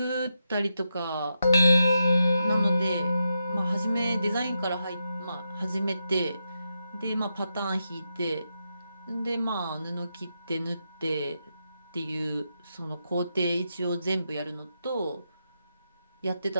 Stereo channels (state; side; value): inverted; both; correlation -0.86